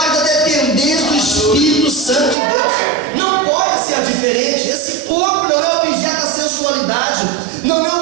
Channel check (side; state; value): left; drops out; at 2.4 s